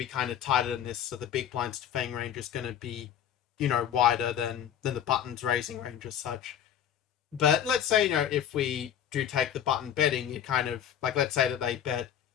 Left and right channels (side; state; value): right; quieter; 9.7 dB